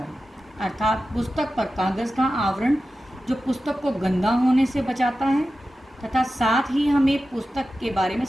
अर्थात पुस्तक पर कागज़ का आवरण जो पुस्तक को गंदा होने से बचाता है तथा साथ ही हमें पुस्तक के बारे में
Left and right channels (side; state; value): both; normal; correlation 0.93